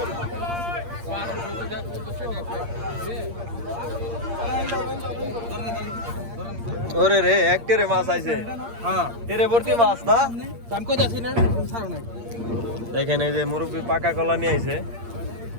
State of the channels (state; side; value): late; left; 8.6 ms